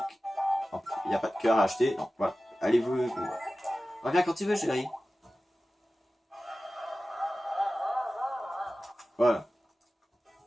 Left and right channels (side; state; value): both; normal; correlation 0.96